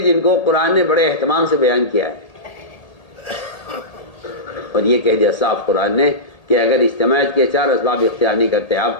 جن کو قرآن نے بڑے اہتمام سے بیان کیا ہے، اور یہ کہہ دیا صاف قرآن نے کہ اگر اجتماعیت کے 4 اسباب اختیار نہیں کرتے آپ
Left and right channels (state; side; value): late; right; 1.8 ms